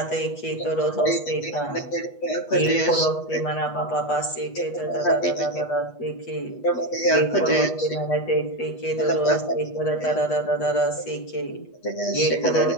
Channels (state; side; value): late; right; 8.2 ms